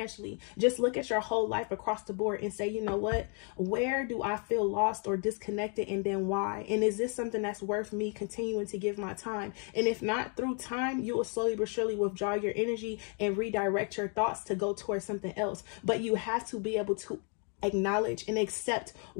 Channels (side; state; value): right; quieter; 39.9 dB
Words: Just look at your whole life across the board and say, you know what, where do I feel lost or disconnected, and then why? And is this something that's worth me continuing to give my time? And if not, through time, you will slowly but surely withdraw your energy and redirect your thoughts to go towards something else. But you have to be able to acknowledge and accept